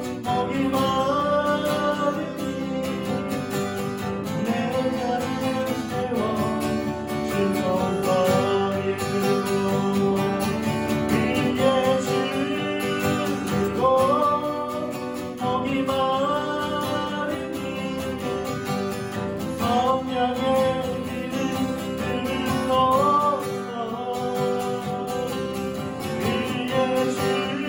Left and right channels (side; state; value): both; identical; correlation 1.00